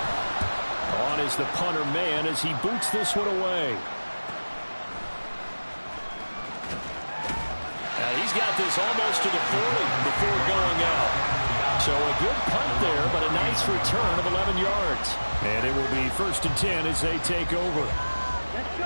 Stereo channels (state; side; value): inverted; both; correlation -1.00